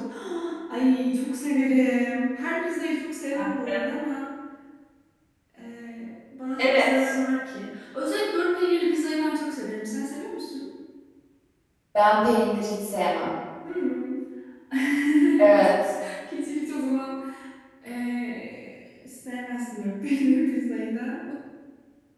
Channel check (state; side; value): identical; both; correlation 1.00